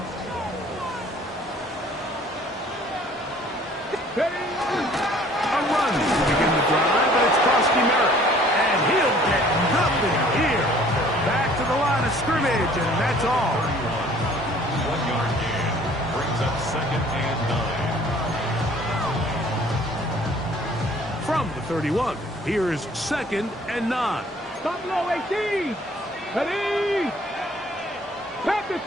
A run to begin the drive, and it's Krosky Merritt. And he'll get nothing here. Back to the line of scrimmage, and that's all. 1-yard gain brings up 2nd and 9. From the 31, here's 2nd and 9. Stop low, 18. Ready. Panther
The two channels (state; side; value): normal; both; correlation 0.55